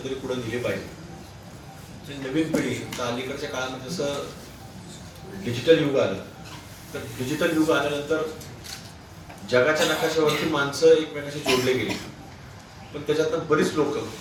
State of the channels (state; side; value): identical; both; correlation 1.00